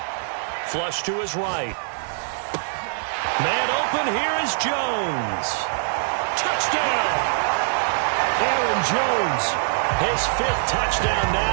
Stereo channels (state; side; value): silent; left; 63 dB below the other